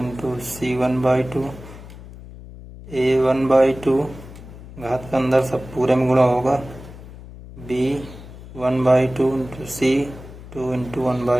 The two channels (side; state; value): left; noise; hum, 16 dB below the sound